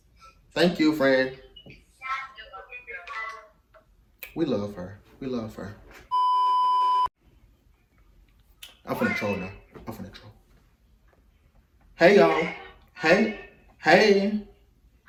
Thank you, friend. We love her. I'm finna troll now. Hey, y'all. Hey.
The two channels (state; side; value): identical; both; correlation 1.00